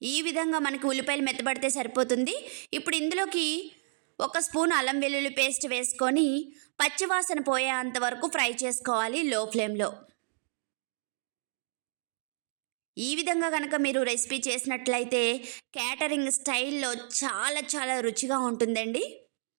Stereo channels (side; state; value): left; silent; digital silence